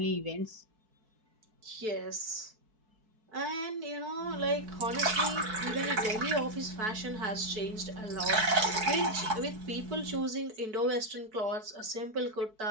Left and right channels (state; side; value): late; left; 4.6 ms